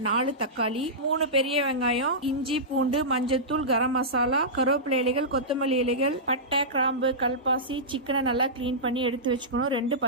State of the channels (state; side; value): normal; both; correlation -0.15